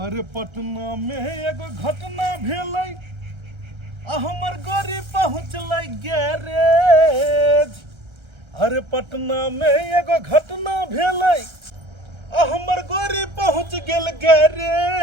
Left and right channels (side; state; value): left; late; 1.3 ms